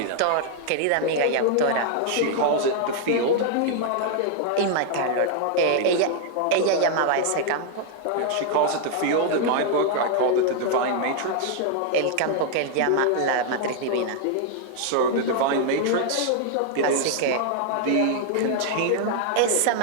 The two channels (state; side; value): different; both; correlation 0.00